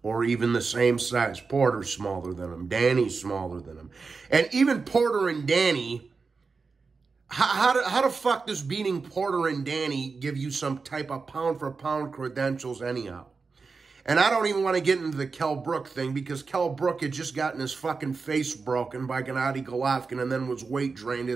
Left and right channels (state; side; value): quieter; left; 4.6 dB